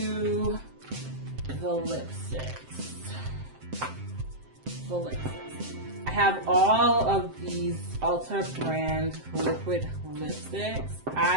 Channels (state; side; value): late; left; 7.7 ms